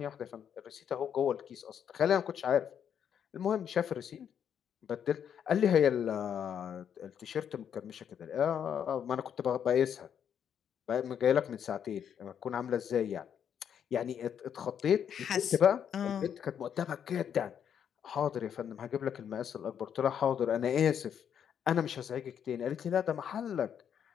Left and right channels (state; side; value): quieter; right; 8.5 dB